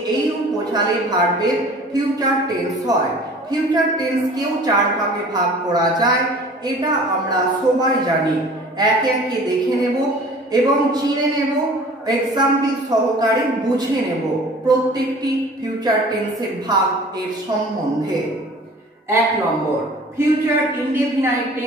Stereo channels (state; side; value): normal; both; correlation 0.46